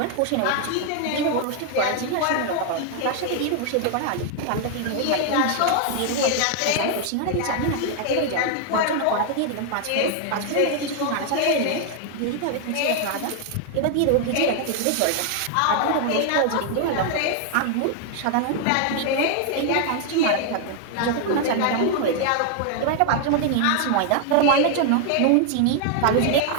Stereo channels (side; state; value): both; different; correlation 0.00